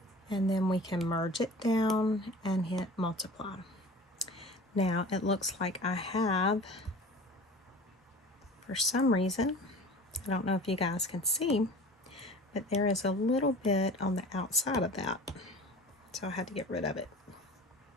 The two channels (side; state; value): both; normal; correlation 0.41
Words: And then we can merge it down and hit multiply. Now it looks like I have, for some reason, I don't know if you guys can see, but there is a little bit on the outside of that. So I had to get rid of it.